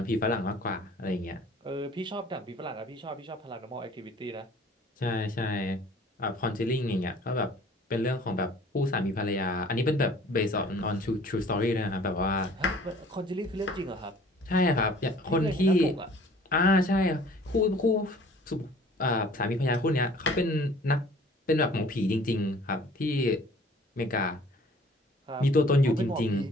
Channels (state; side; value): normal; both; correlation 0.52